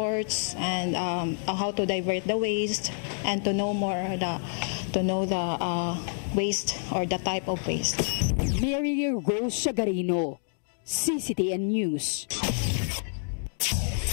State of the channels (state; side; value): silent; right; digital silence